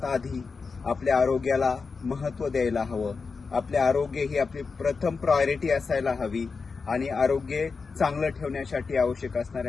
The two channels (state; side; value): quieter; right; 4.8 dB